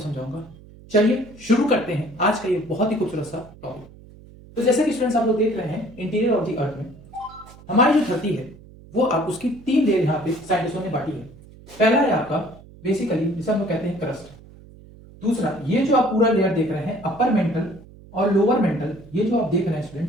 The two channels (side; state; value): right; noise; hum, 21 dB below the sound